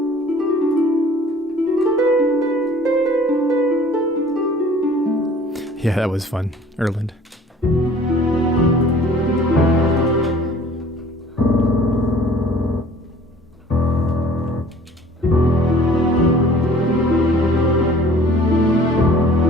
Yeah, that was fun. Erland.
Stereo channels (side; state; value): both; normal; correlation 0.51